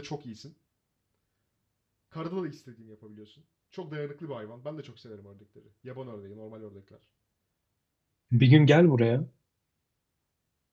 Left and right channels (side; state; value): both; identical; correlation 1.00